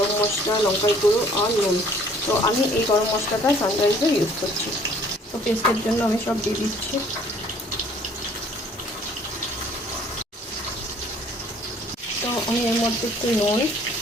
মশলা, লঙ্কার গুঁড়ো আর নুন। তো আমি এই গরম মশলাটা সানরাইজের ইউজ করছি। তো পেস্টের জন্য আমি সব দিয়ে দিচ্ছি। তো আমি এর মধ্যে একটু নুন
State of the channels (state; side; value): normal; both; correlation 0.57